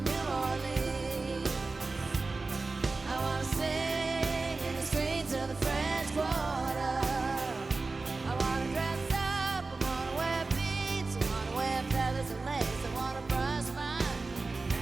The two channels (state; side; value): quieter; left; 3.7 dB